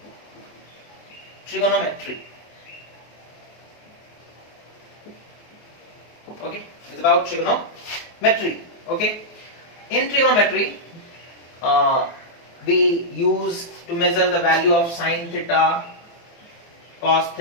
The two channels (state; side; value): late; right; 24 ms